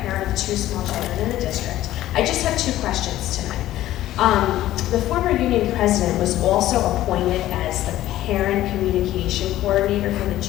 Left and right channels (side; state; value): right; quieter; 14.2 dB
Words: parent of 2 small children in the district. I just have 2 questions tonight. The former union president was also appointed as the parent communication coordinator for the